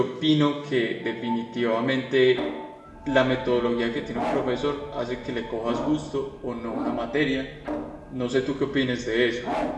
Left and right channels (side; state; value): both; identical; correlation 1.00